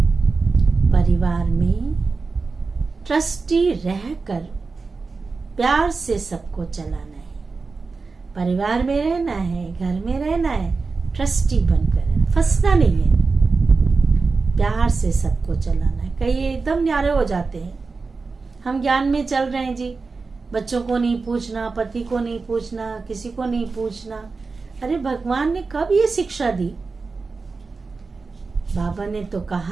परिवार में ट्रस्टी रहकर प्यार से सबको चलाना है। परिवार में रहना है, घर में रहना है, ट्रस्टी बनकर रहना, फंसना नहीं है, प्यार से सबको चलाना है। कई एकदम न्यारे हो जाते हैं, हम ज्ञान में चल रहे हैं जी, बच्चों को नहीं पूछना, पति को नहीं पूछना, किसी को नहीं पूछना। अरे भगवान ने कब ये शिक्षा दी? बाबा ने तो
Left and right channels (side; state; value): left; quieter; 4.3 dB